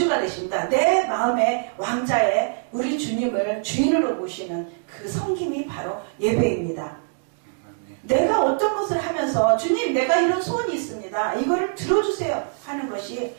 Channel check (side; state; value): left; silent; digital silence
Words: 되십니다. 내 마음의 왕자에 우리 주님을 주인으로 모시는 그 섬김이 바로 예배입니다. 내가 어떤 것을 하면서 주님 내가 이런 소원이 있습니다. 이거를 들어주세요 하는 것이